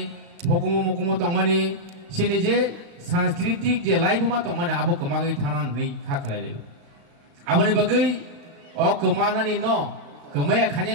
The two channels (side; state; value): left; late; 35 ms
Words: hukumu mukumu tongmani sini je सांस्कृतिक जे लाइफ मा तो माने आबो कमागै थानान नै खाखलाय आबोनि बागै ओ कमानानि न कमाया